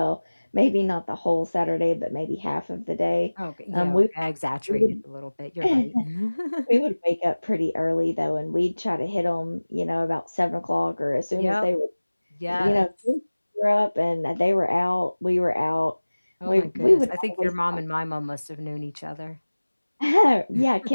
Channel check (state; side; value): inverted; both; correlation -1.00